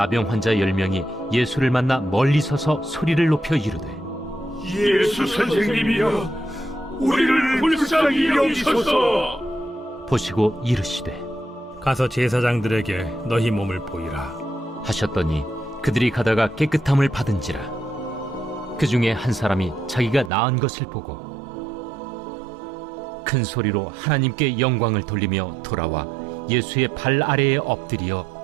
환자 10명이 예수를 만나 멀리 서서 소리를 높여 이르되 예수 선생님이여, 우리를 불쌍히 여기소서. 보시고 이르시되 가서 제사장들에게 너희 몸을 보이라. 하셨더니 그들이 가다가 깨끗함을 받은지라. 그 중에 한 사람이 자기가 나은 것을 보고 큰 소리로 하나님께 영광을 돌리며 돌아와 예수의 발 아래에 엎드려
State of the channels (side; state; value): left; drops out; at 20.3 s